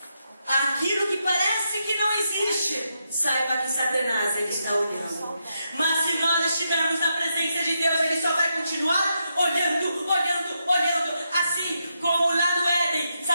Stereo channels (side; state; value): both; inverted; correlation -0.83